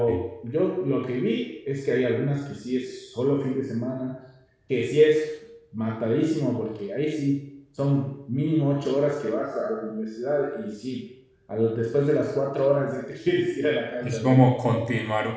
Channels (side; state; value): both; identical; correlation 1.00